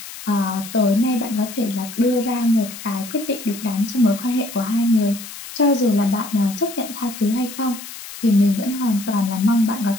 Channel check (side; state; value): left; noise; hiss, 13 dB below the sound